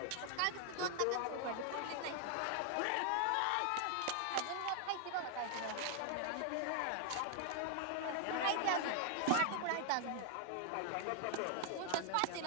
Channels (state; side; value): different; both; correlation 0.00